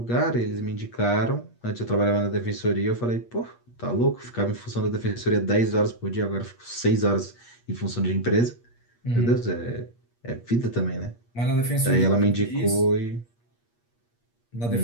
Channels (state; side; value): late; right; 8.5 ms